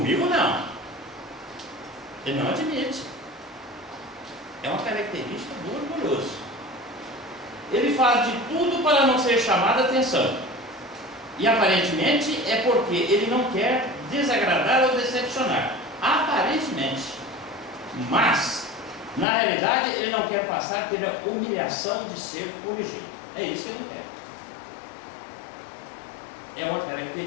não. Ele não admite. É uma característica do orgulhoso. Ele faz de tudo para não ser chamado a atenção. E aparentemente é porque ele não quer desagradar ou decepcionar. Aparentemente. Mas, na realidade, ele não quer passar pela humilhação de ser corrigido. É isso que ele não quer. É uma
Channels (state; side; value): drops out; right; at 19.2 s